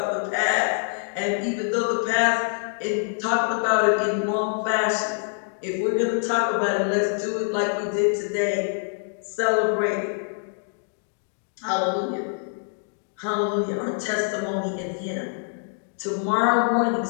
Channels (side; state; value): right; silent; digital silence